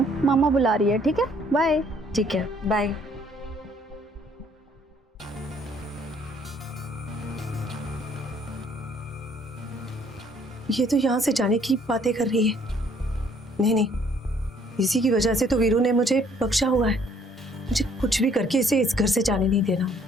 मामा बुला रही है। ठीक है, बाय। ठीक है, बाय। ये तो यहाँ से जाने की बातें कर रही है। नहीं, इसी की वजह से तो वीरू ने मुझे बख्शा हुआ है। मुझे कुछ भी करके इसे इस घर से जाने नहीं देना।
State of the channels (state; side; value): normal; both; correlation 0.62